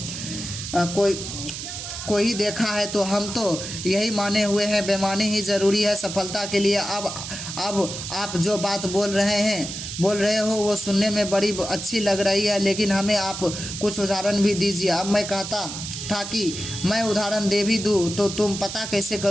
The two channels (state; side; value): noise; right; hiss, 7 dB below the sound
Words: कोई ही देखा है, तो हम तो यही माने हुए हैं बेईमानी ही ज़रूरी है सफलता के लिए। अब आप जो बात बोल रहे हो वो सुनने में बड़ी अच्छी लग रही है, लेकिन हमें आप कुछ उदाहरण भी दीजिए। अब मैं कहता था कि मैं उदाहरण दे भी दूँ तो तुम पता कैसे